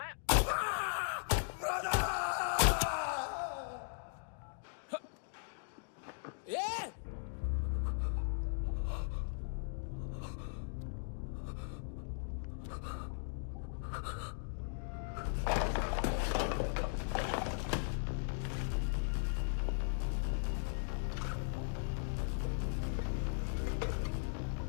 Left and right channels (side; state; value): right; silent; digital silence